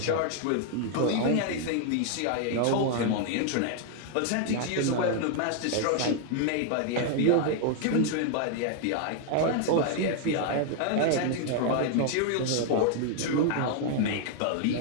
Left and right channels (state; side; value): different; both; correlation 0.00